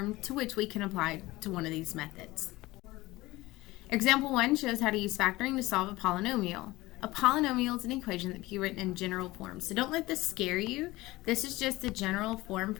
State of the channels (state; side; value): quieter; right; 19.5 dB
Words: to which we can apply to one of these methods. Example 1 shows how to use factoring to solve a polynomial. A polynomial is an equation that can be written in general form. So don't let this scare you. This is just the general form